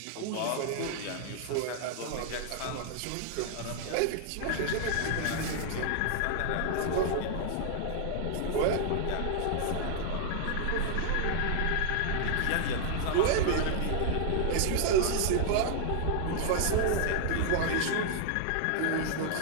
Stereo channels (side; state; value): both; different; correlation -0.01